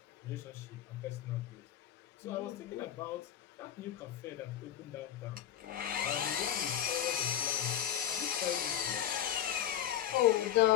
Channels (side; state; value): right; quieter; 10.7 dB